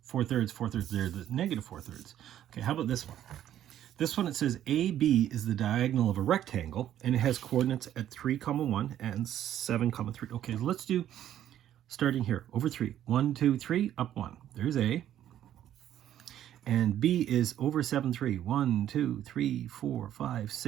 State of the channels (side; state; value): left; quieter; 11.4 dB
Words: 4/3, 4/3, they're the negative 4/3. Okay, how about this one? This one, it says AB is the diagonal of a rectangle, and it has coordinates at 3, 1 and 7, 3. Okay, so let's do, starting here, over 3. 1, 2, 3, up 1. There's A. And B is over 7, 3. 1, 2, 3, 4, 5,